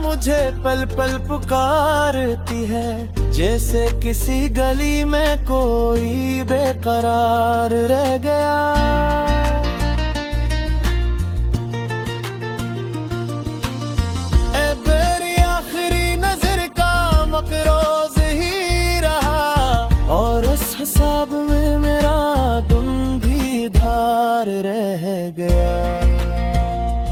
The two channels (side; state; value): both; identical; correlation 1.00